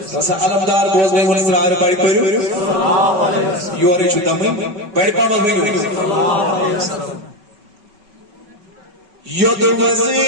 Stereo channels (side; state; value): left; late; 5.3 ms